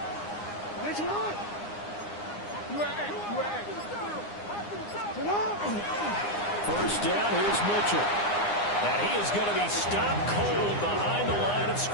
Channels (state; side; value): late; right; 9.8 ms